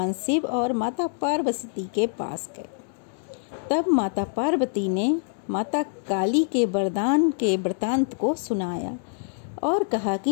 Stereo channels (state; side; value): silent; right; digital silence